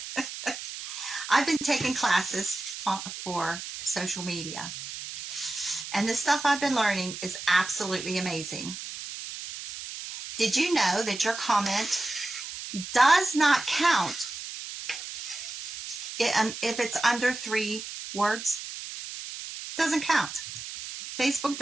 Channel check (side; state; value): right; noise; hiss, 9 dB below the sound